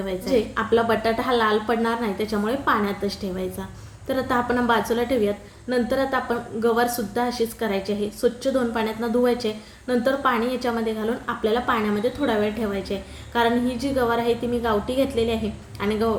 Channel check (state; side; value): identical; both; correlation 1.00